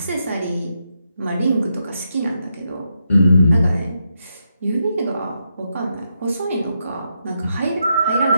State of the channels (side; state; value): both; inverted; correlation -0.82